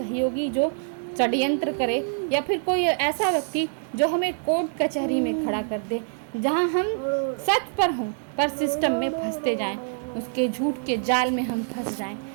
जो षड्यंत्र करे, या फिर कोई ऐसा व्यक्ति जो हमें कोर्ट कचहरी में खड़ा कर दे, जहां हम सच पर हों पर सिस्टम में फंसते जाएं, उसके झूठ के जाल में हम फंस जाएं।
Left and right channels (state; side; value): silent; left; digital silence